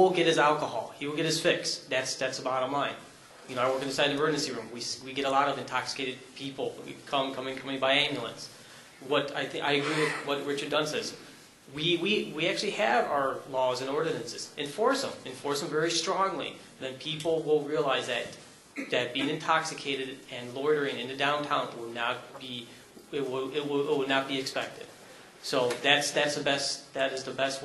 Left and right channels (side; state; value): both; identical; correlation 1.00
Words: get his alcohol. He will get his fix. That's the bottom line. You know, I work inside the emergency room. We get a lot of intoxicated people coming by ambulance. I agree with what Richard Dunn says. We actually have our laws and ordinances. Enforce them very strongly. Then people will realize that being intoxicated and loitering in the downtown will not be not be expected. So that is the best